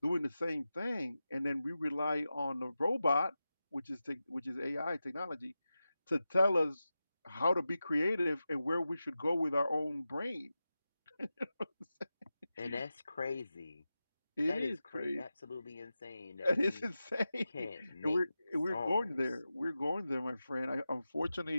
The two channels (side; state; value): both; inverted; correlation -0.93